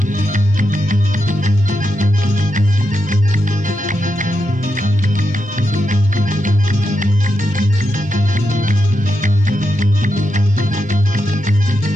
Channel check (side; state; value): both; normal; correlation 0.85